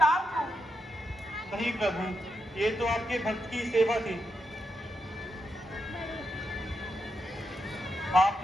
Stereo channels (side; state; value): both; normal; correlation 0.85